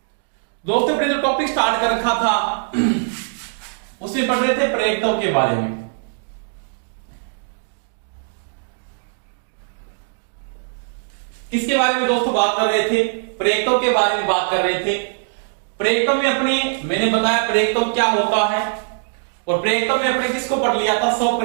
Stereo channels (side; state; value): left; silent; digital silence